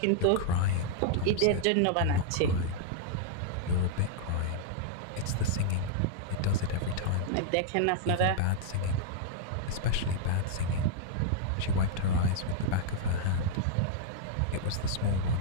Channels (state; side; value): different; both; correlation -0.02